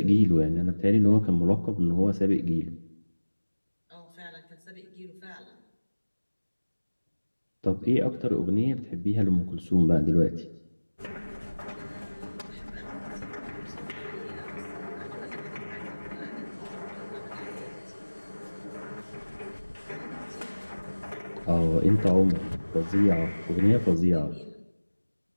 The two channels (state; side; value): inverted; both; correlation -1.00